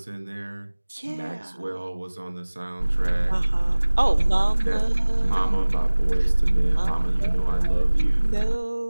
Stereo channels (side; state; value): both; inverted; correlation -1.00